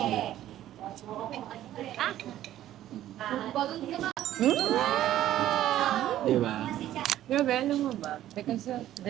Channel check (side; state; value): left; quieter; 12.9 dB